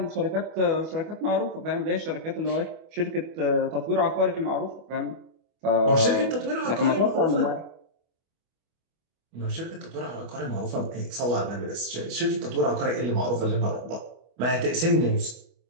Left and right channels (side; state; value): left; late; 25 ms